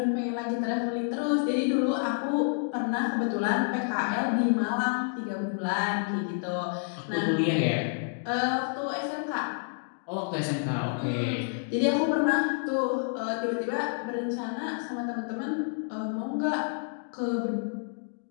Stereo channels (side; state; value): right; silent; digital silence